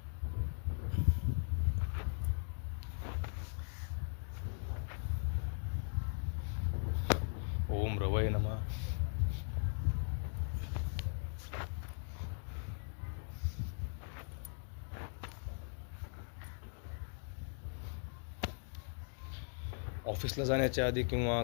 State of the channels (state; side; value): silent; right; digital silence